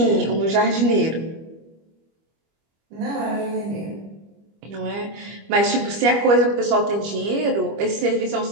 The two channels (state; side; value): late; left; 25 ms